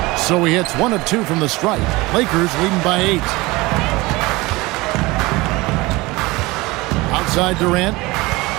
So he hits 1 of 2 from the stripe. Lakers leading by 8. Outside Durant.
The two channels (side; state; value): left; quieter; 22.0 dB